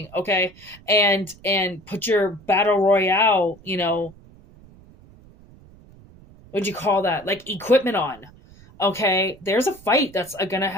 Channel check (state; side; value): noise; right; rumble, 24 dB below the sound